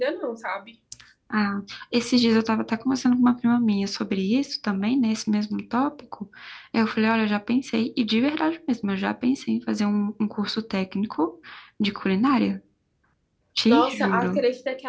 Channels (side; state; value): both; identical; correlation 1.00